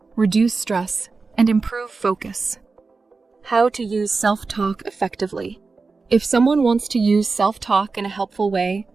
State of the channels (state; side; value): quieter; left; 4.2 dB